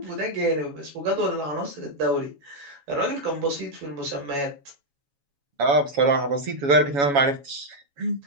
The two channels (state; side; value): late; left; 7.1 ms